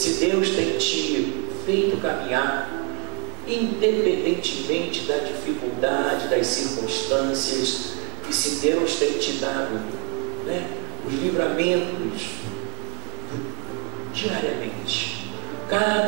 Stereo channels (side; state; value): left; quieter; 36.0 dB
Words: Deus tem te feito caminhar, independentemente da dificuldade, das circunstâncias, e se Deus tem te dado, né, os livramentos diariamente,